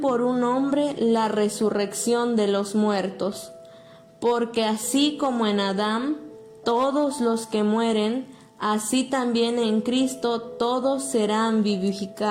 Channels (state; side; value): identical; both; correlation 1.00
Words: un hombre la resurrección de los muertos. Porque así como en Adán todos los que mueren, así también en Cristo todos serán